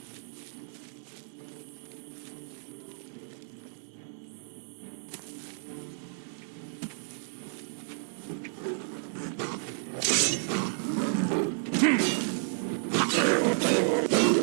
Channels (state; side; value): silent; left; digital silence